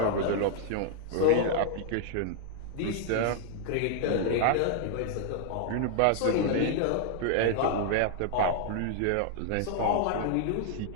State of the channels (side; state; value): both; different; correlation 0.00